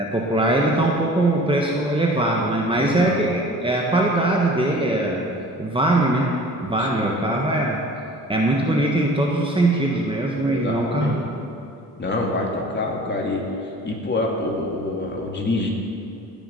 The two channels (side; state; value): both; normal; correlation 0.46